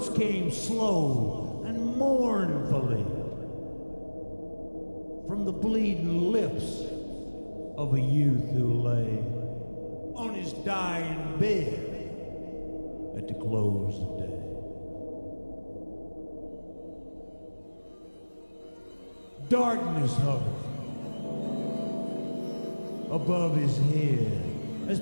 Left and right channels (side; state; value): both; inverted; correlation -1.00